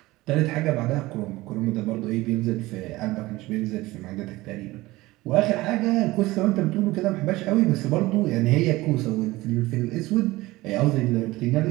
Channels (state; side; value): quieter; left; 19.3 dB